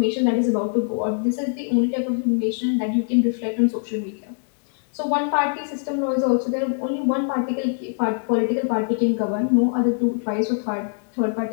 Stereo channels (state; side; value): silent; right; digital silence